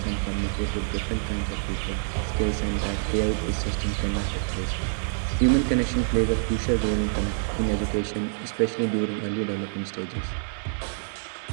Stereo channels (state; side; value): silent; left; digital silence